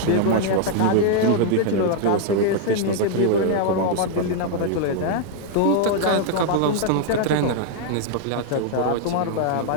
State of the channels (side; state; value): both; different; correlation -0.01